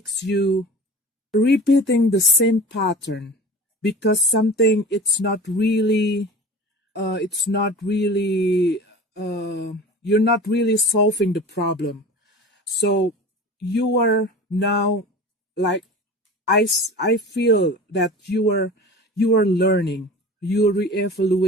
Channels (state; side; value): normal; both; correlation 0.36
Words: you repeating the same pattern because something it's not really you're not really solving the problem. So you are now, like, I feel that you are learning, you're